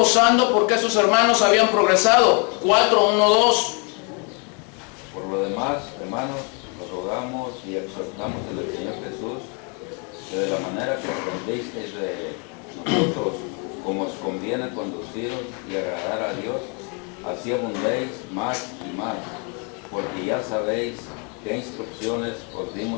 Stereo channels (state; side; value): quieter; right; 35.9 dB